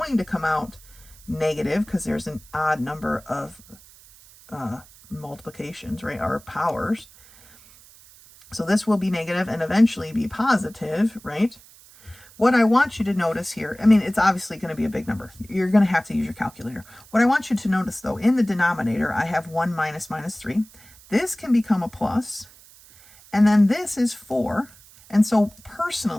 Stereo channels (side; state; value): right; noise; hiss, 24 dB below the sound